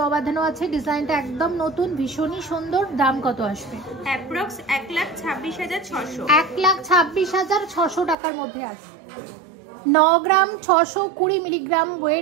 বাঁধানো আছে, ডিজাইনটা একদম নতুন, ভীষণই সুন্দর। দাম কত আসবে? অ্যাপ্রক্স 1,26,600। 1,26,600 টাকার মধ্যে আসবে। 9 গ্রাম 620 মিলিগ্রাম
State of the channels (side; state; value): left; drops out; at 8.2 s